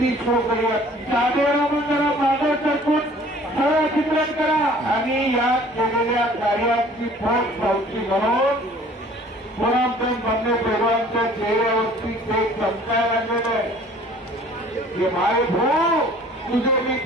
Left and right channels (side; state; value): both; normal; correlation 0.52